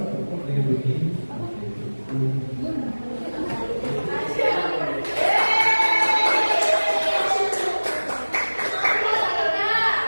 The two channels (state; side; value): inverted; both; correlation -1.00